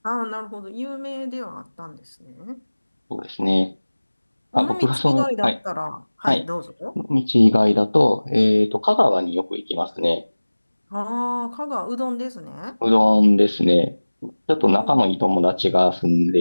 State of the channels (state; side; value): inverted; both; correlation -1.00